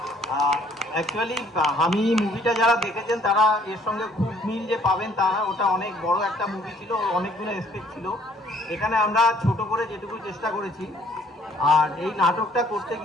অ্যাকচুয়ালি আমি মুভিটা যারা দেখেছেন তারা এর সঙ্গে খুব মিল যে পাবেন তারা, ওটা অনেক বড় একটা মুভি ছিল, অনেকগুলো এক্সপেক্ট ছিল। এখানে আমরা ছোট করে যেটুকু চেষ্টা করেছি। আর এই নাটকটা করতে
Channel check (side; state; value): both; normal; correlation 0.61